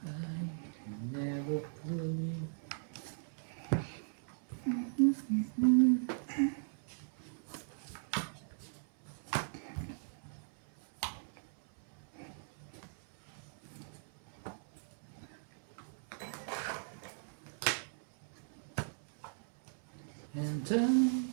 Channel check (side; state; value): left; silent; 52 dB below the other